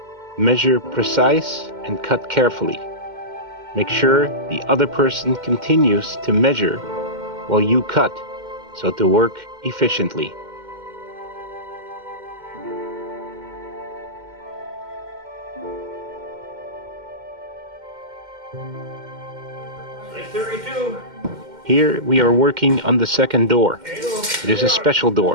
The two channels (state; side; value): late; left; 2.1 ms